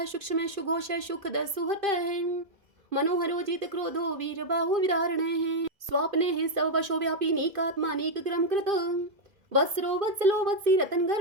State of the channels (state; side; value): late; left; 2.5 ms